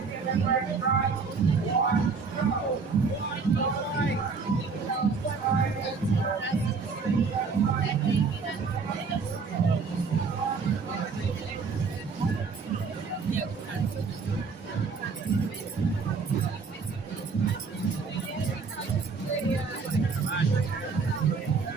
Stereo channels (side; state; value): left; quieter; 4.9 dB